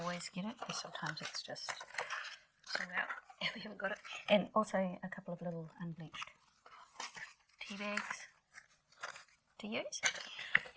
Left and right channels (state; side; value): identical; both; correlation 1.00